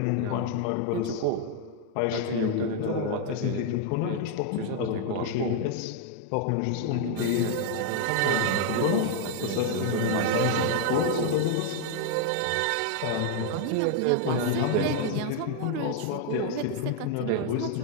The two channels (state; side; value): different; both; correlation 0.00